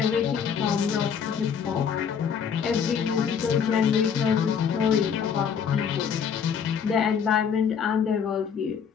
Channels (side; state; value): right; quieter; 7.2 dB